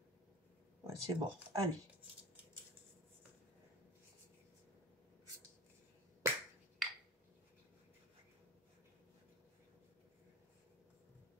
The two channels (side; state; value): both; normal; correlation 0.35